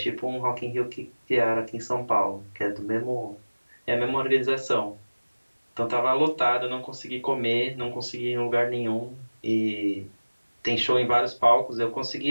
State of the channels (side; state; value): both; inverted; correlation -1.00